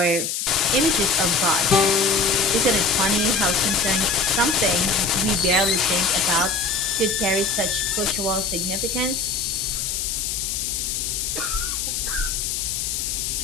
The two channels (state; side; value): noise; left; hiss, 2 dB below the sound